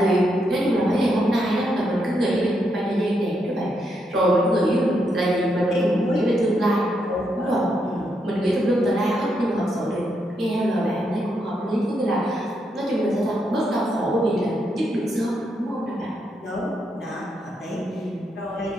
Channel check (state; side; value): normal; both; correlation 0.80